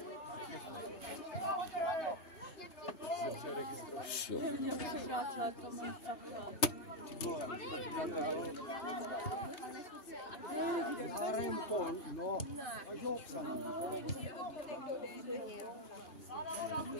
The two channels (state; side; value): late; right; 3.2 ms